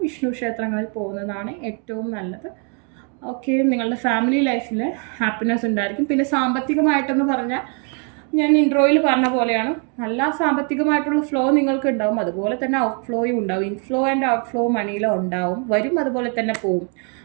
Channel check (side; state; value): left; quieter; 38.9 dB